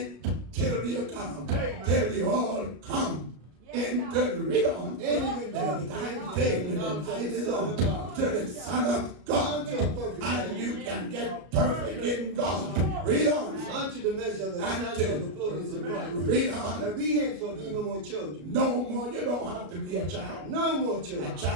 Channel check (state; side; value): late; left; 33 ms